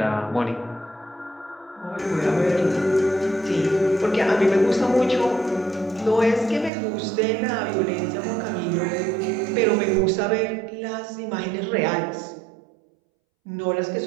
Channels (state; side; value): drops out; left; at 6.7 s